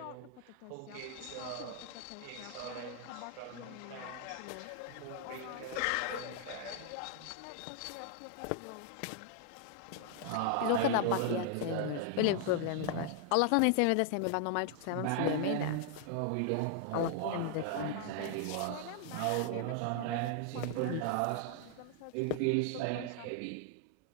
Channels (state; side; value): different; both; correlation 0.00